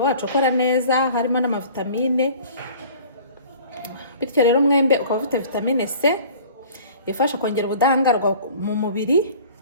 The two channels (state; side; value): inverted; both; correlation -0.47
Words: ukora neza, harimo n'amavitamine. Bityo rero umwembe ukaba ufite vitamine C ifasha kongera ubudahangarwa mu mubiri,